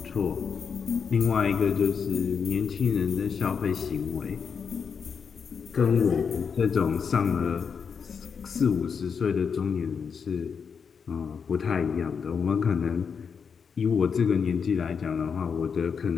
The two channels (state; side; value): quieter; right; 6.3 dB